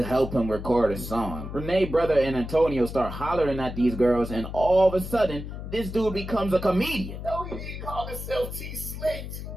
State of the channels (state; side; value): noise; left; hum, 8 dB below the sound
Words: help him record a song. Renee's brother and Antonio start hollering at these girls, and all of a sudden, this dude becomes a comedian. No, he didn't call himself T-Slick.